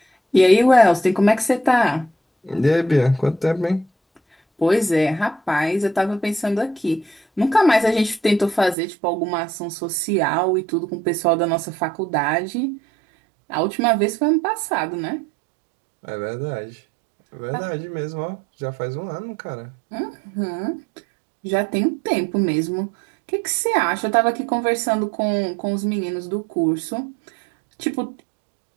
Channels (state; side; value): drops out; left; at 8.8 s